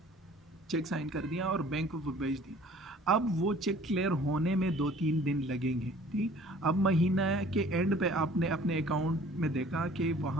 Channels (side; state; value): both; normal; correlation 0.51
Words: चेक साइन कर दिया और बैंक को वो भेज दिया, अब वो चेक क्लियर होने में 2-3 दिन लगेंगे। ठीक, अब महीना के एंड पे आपने अपने अकाउंट में देखा कि